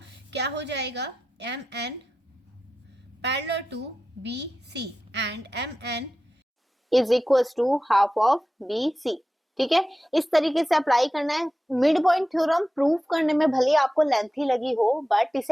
क्या हो जाएगा, M N parallel to B C and M N is equal to half of B C. ठीक है, इस तरीके से अप्लाई करना है। मिड पॉइंट थ्योरम प्रूव करने में भले आपको लेंथी लगी हो, बट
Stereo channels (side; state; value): both; normal; correlation 0.93